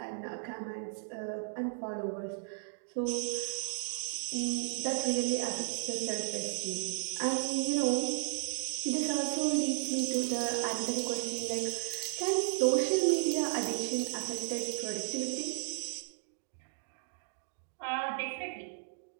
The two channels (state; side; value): silent; left; digital silence